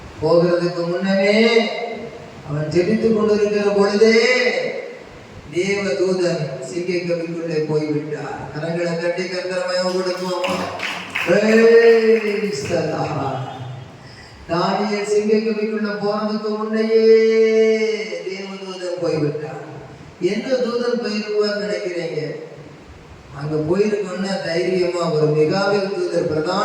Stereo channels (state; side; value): identical; both; correlation 1.00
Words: போகிறதுக்கு முன்னமே அவன் ஜெபித்துக் கொண்டிருக்கிற பொழுதே தேவ தூதன் சிங்கை கவிக்குள்ளே போய்விட்டார். கரங்களை கட்டி கர்த்தரமயம் கொடுப்போம். தானியேல் சிங்கை கவிக்குள்ள போறதுக்கு முன்னையே தேவ தூதன் போய்விட்டார். எந்த தூதன் போயிருப்பார் நினைக்கிறீங்க? அங்க போயிருக்கோம்னா தைரியமா ஒரு மிகாவேல் தூதர்,